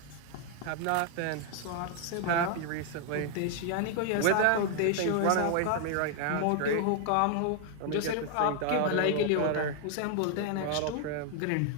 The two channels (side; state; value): both; different; correlation 0.00